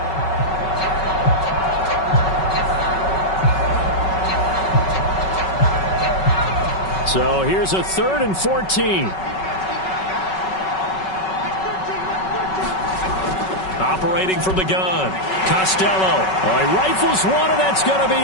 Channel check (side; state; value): right; late; 5.3 ms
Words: So here's a 3rd and 14. Operating from the gun, Costello. Oh, he rifles one, and that's going to be